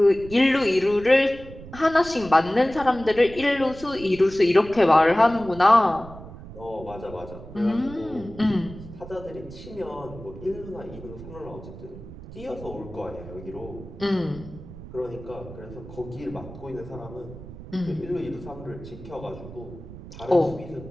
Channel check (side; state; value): right; noise; rumble, 15 dB below the sound